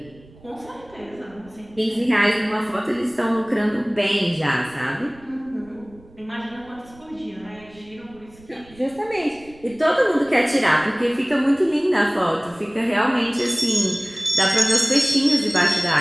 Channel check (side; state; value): right; noise; rumble, 25 dB below the sound